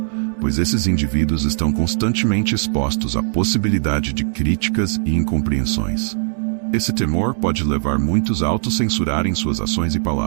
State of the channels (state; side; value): silent; left; digital silence